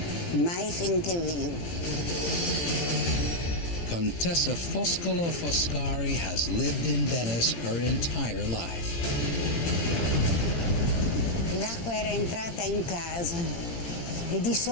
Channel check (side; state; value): right; late; 18 ms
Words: mai finché vivo. Contessa Foscolo Foscari has lived in Venice her entire life. L'acqua era entrata in casa e di